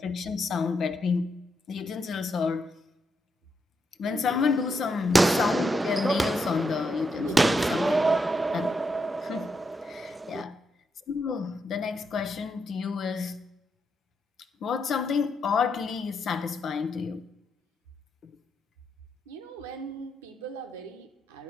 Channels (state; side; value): normal; both; correlation 0.81